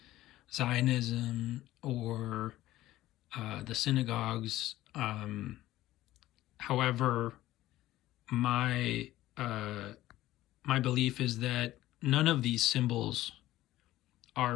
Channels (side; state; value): right; quieter; 15.5 dB